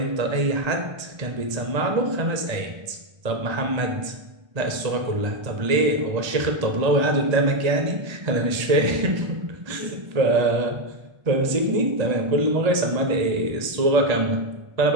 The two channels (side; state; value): left; late; 1.8 ms